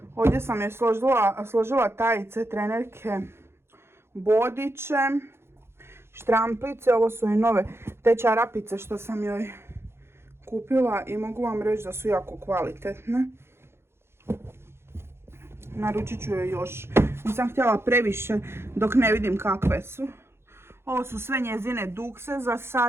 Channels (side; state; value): left; late; 0.12 ms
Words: Ovdje sam je složila tajice, trenerke, bodiće, štramplice. Ovo su i nove te čarapice što sam joj kupila i mogu vam reći da su jako kvalitetne. Naručit ću joj još. Nisam htjela previše dok ne vidim kakve su. Ovo su sve njezine dukse za